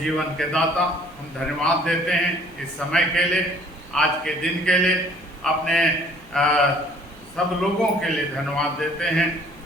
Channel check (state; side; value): noise; right; hum, 26 dB below the sound